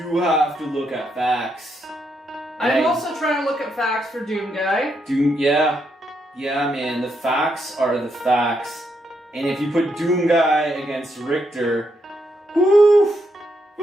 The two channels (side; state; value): both; normal; correlation 0.79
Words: have to look at facts. I'm also trying to look at facts for Doomguy. Yeah, man. The facts are the facts. And if you put Doomguy against Richter, woof,